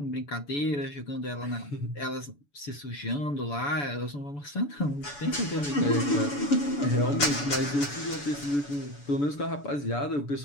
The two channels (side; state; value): right; late; 6.9 ms